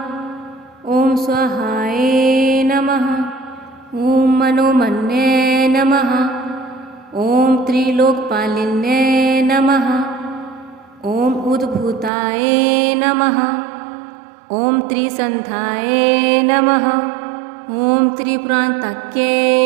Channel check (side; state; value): left; drops out; at 12.1 s